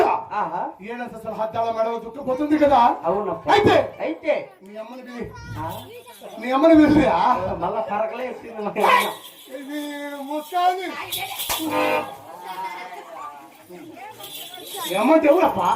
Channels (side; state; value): both; identical; correlation 1.00